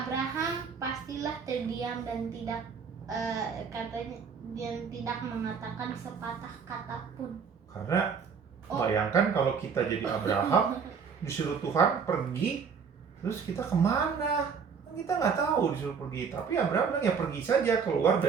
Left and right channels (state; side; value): quieter; left; 6.2 dB